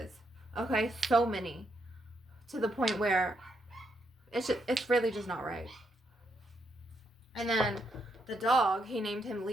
Okay? So many. To the point where it's really just not right. And then the dog, he named him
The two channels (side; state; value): both; normal; correlation 0.78